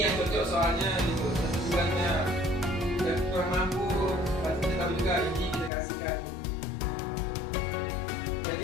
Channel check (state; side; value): drops out; right; at 5.7 s